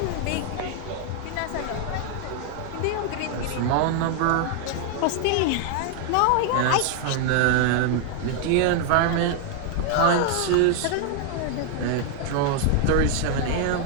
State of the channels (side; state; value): both; different; correlation 0.00